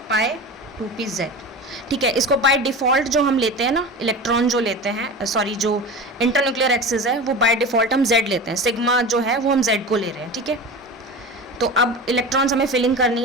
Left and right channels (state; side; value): normal; both; correlation 0.30